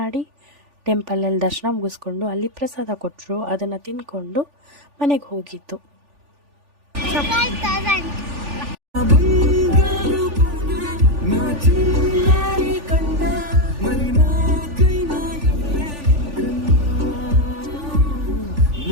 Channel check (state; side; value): late; left; 3.4 ms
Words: ಟೆಂಪಲಲ್ಲಿ ದರ್ಶನ ಮುಗಿಸ್ಕೊಂಡು ಅಲ್ಲಿ ಪ್ರಸಾದ ಕೊಟ್ಟರು. ಅದನ್ನು ತಿಂದ್ಕೊಂಡು ಮನೆಗೆ ಹೋಗಿತ್ತು.